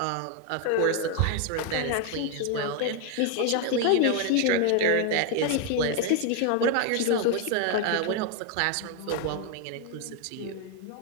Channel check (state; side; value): different; both; correlation 0.01